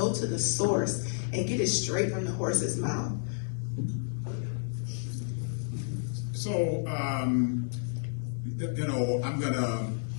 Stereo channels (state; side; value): silent; right; 57 dB below the other